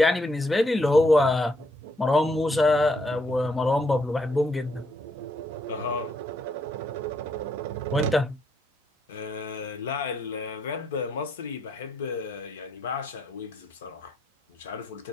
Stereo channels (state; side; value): normal; both; correlation 0.74